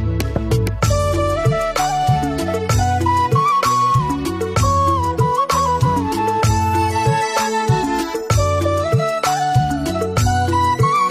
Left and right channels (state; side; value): identical; both; correlation 1.00